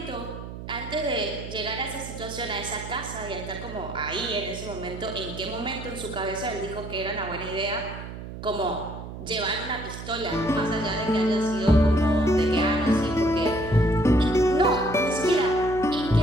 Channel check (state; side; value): noise; right; hum, 10 dB below the sound